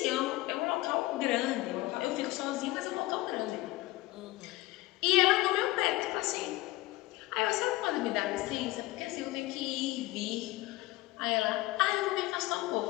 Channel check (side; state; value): right; quieter; 19.0 dB